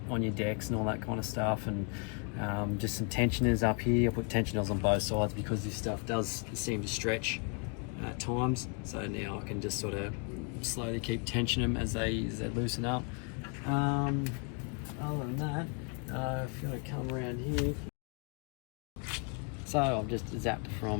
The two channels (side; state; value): right; quieter; 38.4 dB